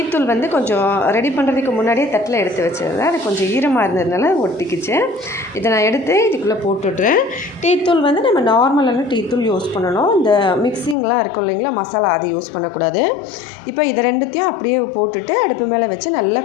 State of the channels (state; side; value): drops out; right; at 11.0 s